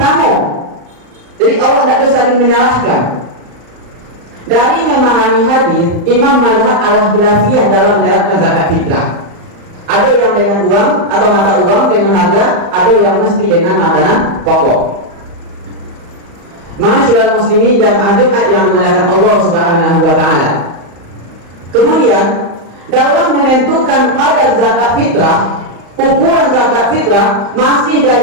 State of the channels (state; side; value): late; left; 35 ms